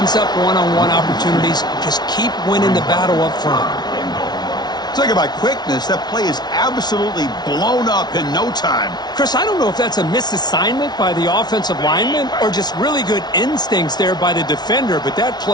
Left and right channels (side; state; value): right; late; 0.20 ms